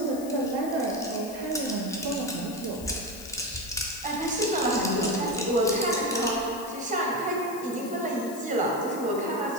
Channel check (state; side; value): noise; left; hiss, 15 dB below the sound